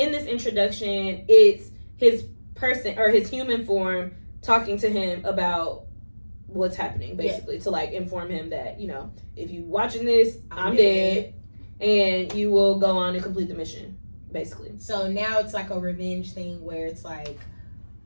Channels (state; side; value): inverted; both; correlation -1.00